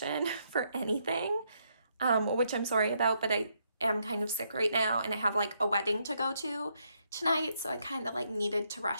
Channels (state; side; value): inverted; both; correlation -0.76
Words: for anything, which I'm sorry about, but I am kind of sick right now and I have like a wedding to go to tonight, so I kind of like needed to